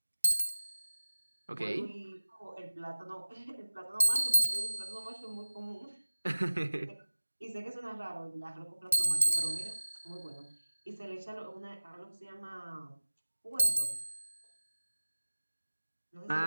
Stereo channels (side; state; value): both; inverted; correlation -1.00